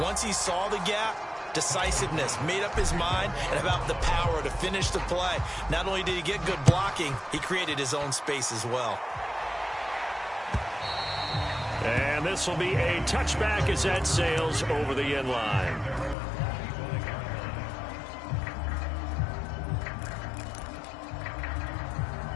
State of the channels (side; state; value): right; drops out; at 16.2 s